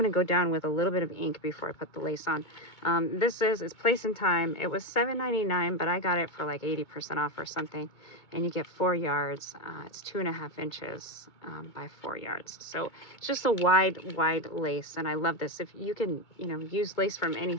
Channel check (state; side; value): late; right; 2.2 ms